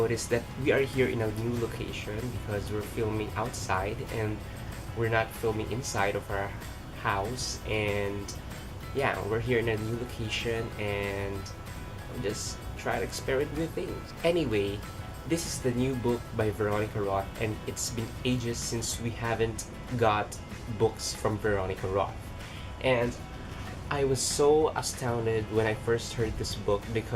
that we are here in a new location because we're filming outside and we're not filming inside of our house, and yeah, we're here in a new location and just try to experiment with things. Anyway, this is the new book by Veronica Roth, and it's been ages since we haven't got books from Veronica Roth. And I was so astounded when I first heard this book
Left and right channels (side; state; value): both; identical; correlation 1.00